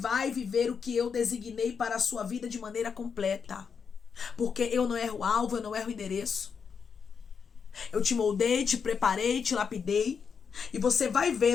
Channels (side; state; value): right; quieter; 6.3 dB